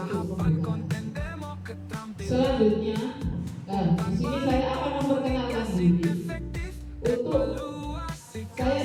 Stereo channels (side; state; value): both; identical; correlation 1.00